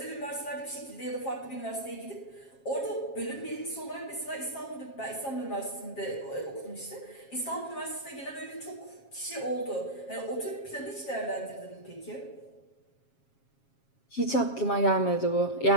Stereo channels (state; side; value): late; right; 7.4 ms